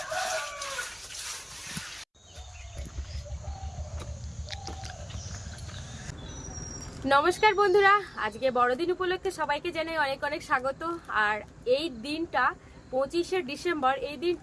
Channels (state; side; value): identical; both; correlation 1.00